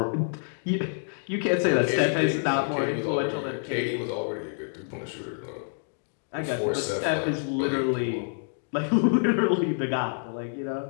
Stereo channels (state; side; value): silent; right; digital silence